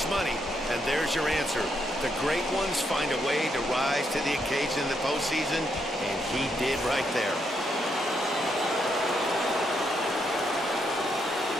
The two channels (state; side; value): normal; both; correlation 0.77